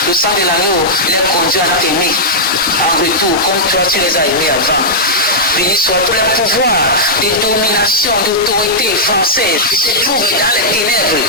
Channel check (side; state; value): both; normal; correlation -0.09